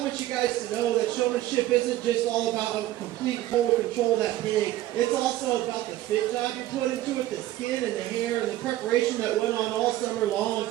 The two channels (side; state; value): left; quieter; 14.8 dB